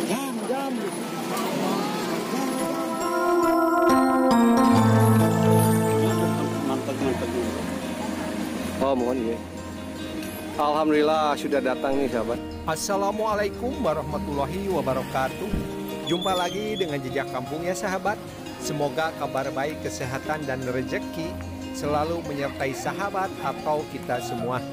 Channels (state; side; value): identical; both; correlation 1.00